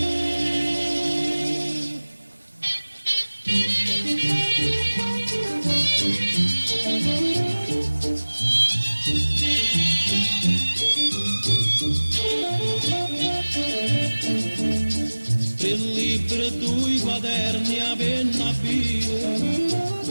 Il libro due quaderni a penna bile,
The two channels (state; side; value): inverted; both; correlation -1.00